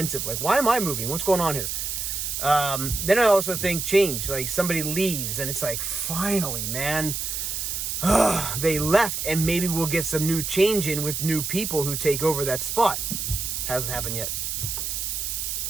like, why am I moving? What's going on here? Then I also think change, like somebody leaves and it's like, finally, man, they left, and maybe we'll get some new change in with new people who take over that spot. Hasn't happened yet.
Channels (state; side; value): noise; right; hiss, 3 dB below the sound